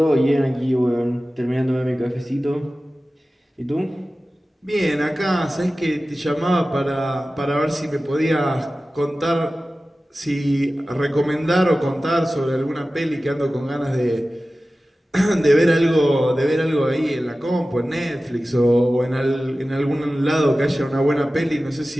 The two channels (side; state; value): both; normal; correlation 0.96